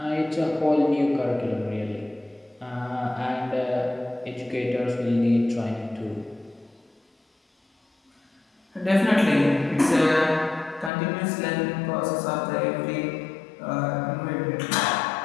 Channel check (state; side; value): drops out; right; at 10.9 s